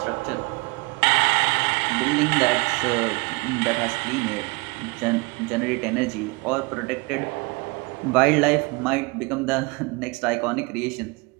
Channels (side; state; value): left; quieter; 27.4 dB